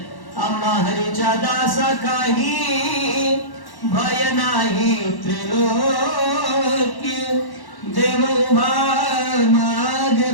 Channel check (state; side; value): late; right; 1.1 ms